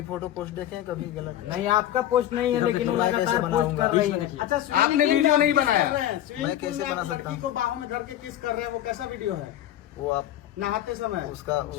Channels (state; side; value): quieter; right; 12.3 dB